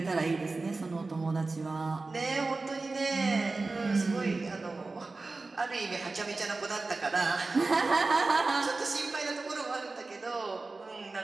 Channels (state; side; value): quieter; left; 3.6 dB